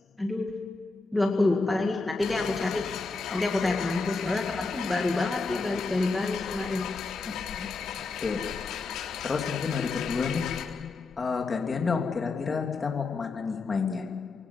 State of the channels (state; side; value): quieter; right; 3.8 dB